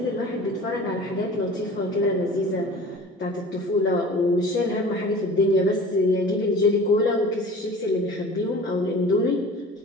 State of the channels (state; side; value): normal; both; correlation 0.42